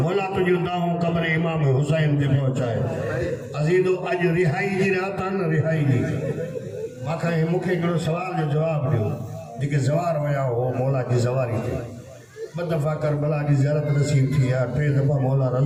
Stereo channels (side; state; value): both; identical; correlation 1.00